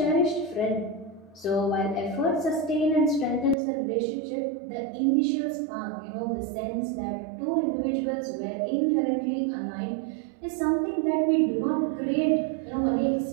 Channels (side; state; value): left; drops out; at 3.6 s